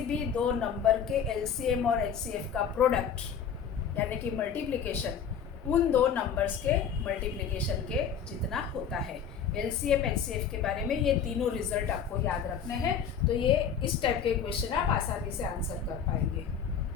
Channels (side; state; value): right; quieter; 7.4 dB